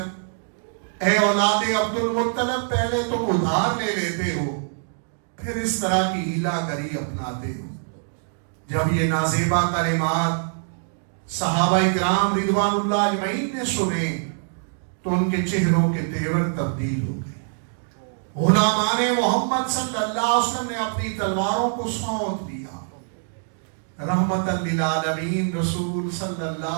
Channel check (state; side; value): silent; left; digital silence